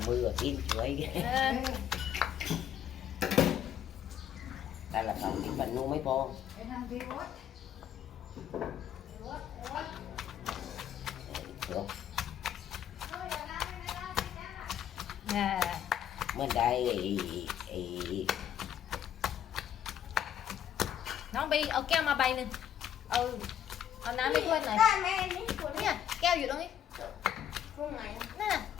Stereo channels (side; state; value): right; quieter; 10.0 dB